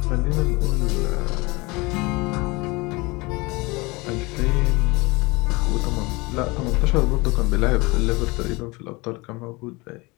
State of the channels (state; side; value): quieter; right; 24.5 dB